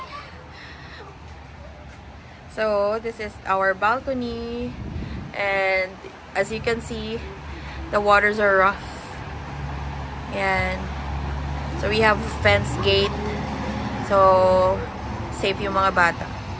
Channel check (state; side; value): identical; both; correlation 1.00